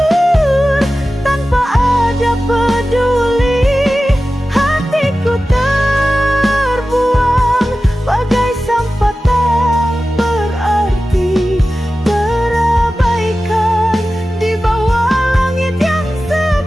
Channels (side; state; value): both; normal; correlation 0.94